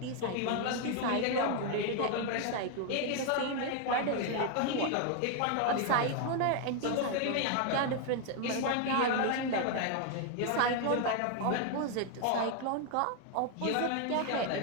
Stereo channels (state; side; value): different; both; correlation 0.00